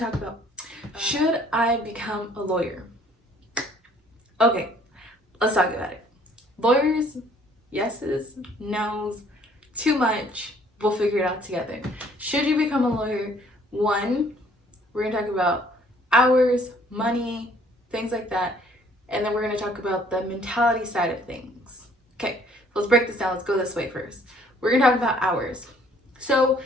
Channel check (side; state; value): both; normal; correlation 0.59